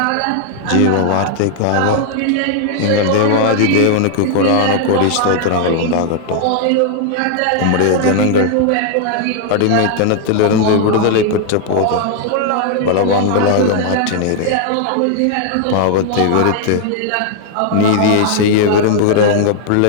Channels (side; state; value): both; different; correlation 0.00